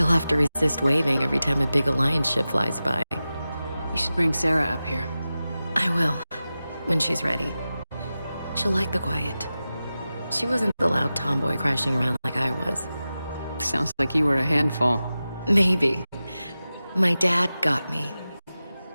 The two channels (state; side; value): inverted; both; correlation -0.94